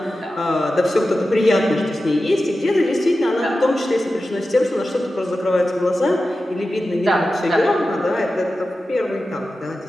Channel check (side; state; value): both; normal; correlation 0.93